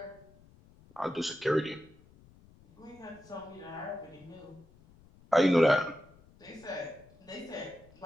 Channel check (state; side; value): noise; left; rumble, 26 dB below the sound